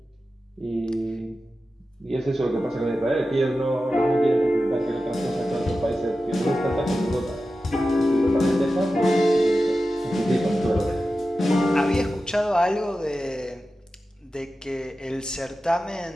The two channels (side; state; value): both; normal; correlation 0.93